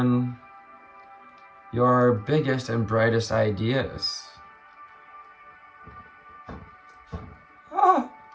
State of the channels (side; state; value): both; identical; correlation 1.00